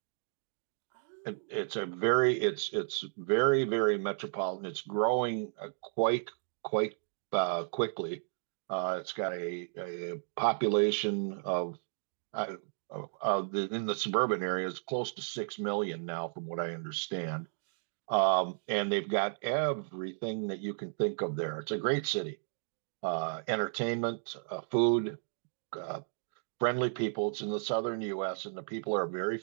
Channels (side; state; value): left; silent; digital silence